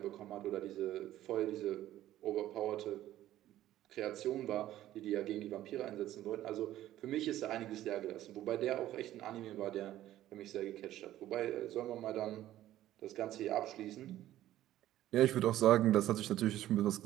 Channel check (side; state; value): left; quieter; 13.6 dB